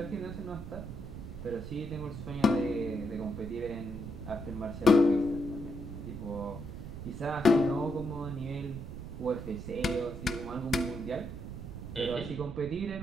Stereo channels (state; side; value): noise; right; rumble, 9 dB below the sound